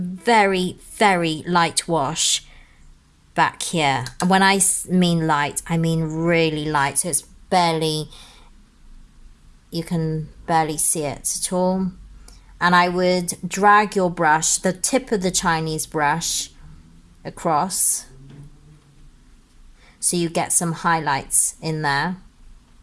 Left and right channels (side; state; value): both; identical; correlation 1.00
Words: very light wash back here. And when I mean light, I mean really light, so it's barely, you can barely see it at all. And I would drag your brush, the tip of the Chinese brush, across so you get some highlights in there.